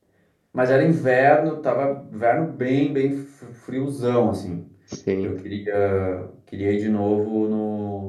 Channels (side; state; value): both; identical; correlation 1.00